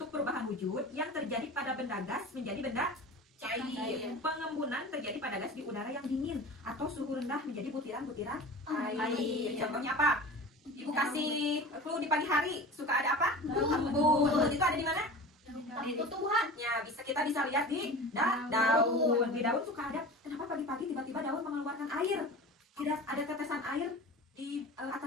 perubahan wujud yang terjadi pada benda gas menjadi benda cair. Cair. Pengembunan terjadi pada gas di udara yang dingin atau suhu rendah menjadi butiran-butiran air. Air. Contohnya apa? Ibu kasih clue di pagi hari suka ada apa? Embun. Embun. Itu ada di mana? Di tumbuhan. Ya, kita bisa lihat di daun. Di daun suka ada. Kenapa pagi-pagi tiba-tiba daun mengeluarkan air? Ada tetesan air di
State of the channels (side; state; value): both; normal; correlation 0.35